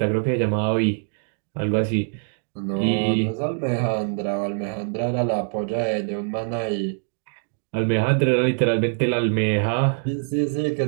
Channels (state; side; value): silent; left; digital silence